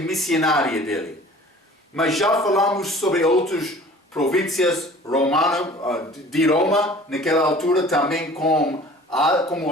missionária dele. Mas já falamos sobre outras províncias romanas de Roma, naquela altura também como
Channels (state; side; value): normal; both; correlation 0.46